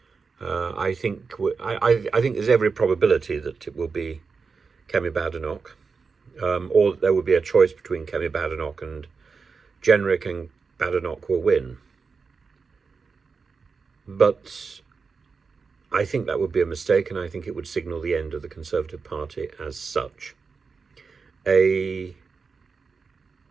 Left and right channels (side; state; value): left; quieter; 5.0 dB